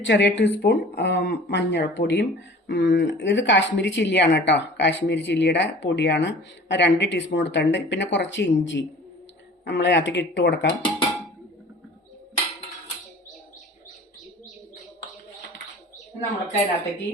ചെറിയ ടീസ്പൂൺ മഞ്ഞൾപ്പൊടിയും, ഇത് കാശ്മീരി ചില്ലിയാണ് കേട്ടോ, കാശ്മീരി ചില്ലിയുടെ പൊടിയാണ്, 2 ടീസ്പൂൺ എടുത്തിട്ടുണ്ട്. പിന്നെ കുറച്ച് ഇഞ്ചി നമ്മൾ അതിലേക്ക് ഇട്ട് കൊടുക്കാം. നമ്മൾക്ക് അതിനകത്തേക്ക്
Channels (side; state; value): both; normal; correlation 0.44